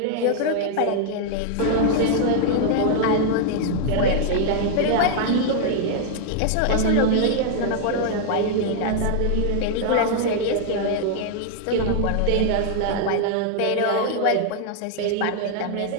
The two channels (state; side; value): different; both; correlation -0.01